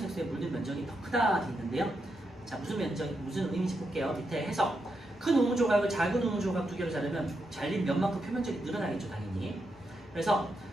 물든 면적이 더 크다 돼 있는데요. 자, 무슨 의미인지 볼게요. 밑에 해석. 큰 우무 조각을 작은 우무 조각 두 개로 자르면 잘린 면만큼 표면적이 늘어나겠죠, 당연히. 그래서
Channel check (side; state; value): both; normal; correlation 0.83